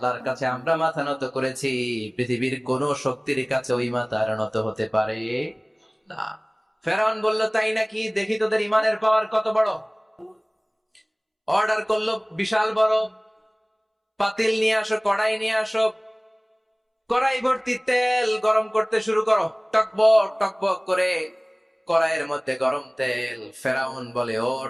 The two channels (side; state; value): both; identical; correlation 1.00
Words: কাছে আমরা মাথা নত করেছি, পৃথিবীর কোন শক্তির কাছে ওই মাথা আর নত হতে পারে না। ফেরাউন বলল, তাই নাকি? দেখি তোদের ঈমানের পাওয়ার কত বড়। অর্ডার করলো, বিশাল বড় পাতিল নিয়ে আসো, কড়াই নিয়ে আসো, কড়াই ভর্তি তেল গরম করতে শুরু করো। টকবক টকবক করে কড়াইয়ের মধ্যে গরম তেল। ফেরাউন বলে, ও